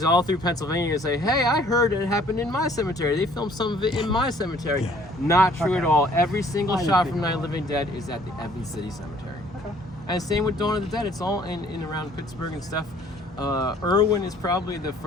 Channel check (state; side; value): normal; both; correlation 0.58